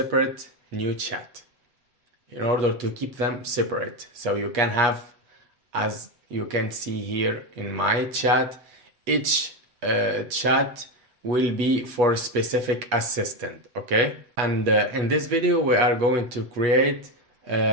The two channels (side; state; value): left; late; 8.3 ms